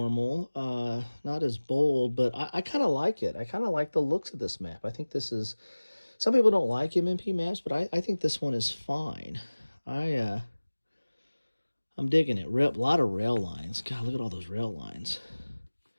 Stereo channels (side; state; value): both; inverted; correlation -1.00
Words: not as bold, but I kind of like it. I kind of like the looks of this map. I think this is, some people don't like MMP maps, but I think this one is fine. I'm digging it. A lot of rail lines. God, look at all those rail lines.